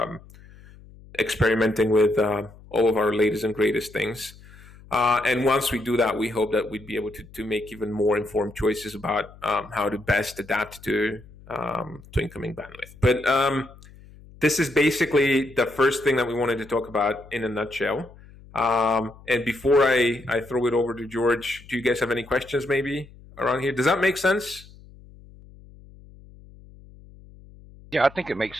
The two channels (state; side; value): noise; left; hum, 22 dB below the sound